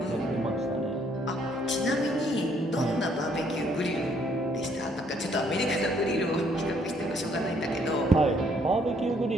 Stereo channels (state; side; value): normal; both; correlation 0.67